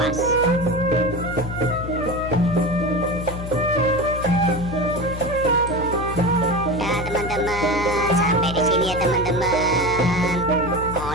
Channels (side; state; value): left; noise; hum, 8 dB below the sound